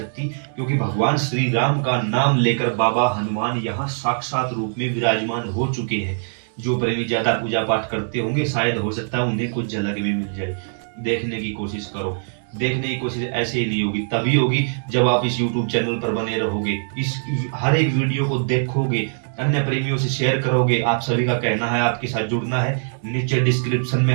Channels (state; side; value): silent; left; digital silence